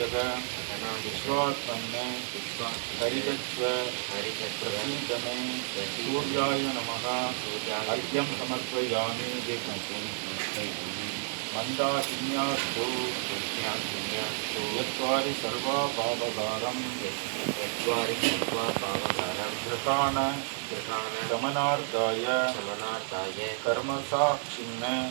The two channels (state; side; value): silent; left; digital silence